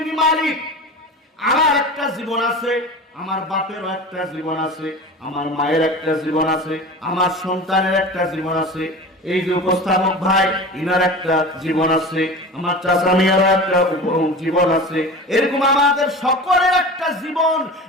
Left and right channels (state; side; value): normal; both; correlation 0.34